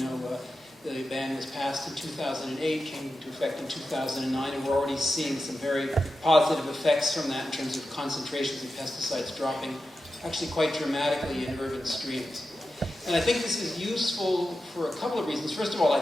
the ban was passed in 2008, came into effect in 2009, and we're already seeing some very positive effects from that in terms of concentrations of pesticides dropping actually quite dramatically in urban streams. And I think this is useful for a couple of reasons. First of all, I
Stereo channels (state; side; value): normal; both; correlation 0.91